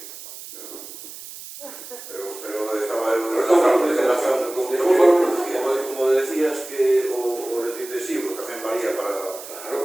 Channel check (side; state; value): right; noise; hiss, 13 dB below the sound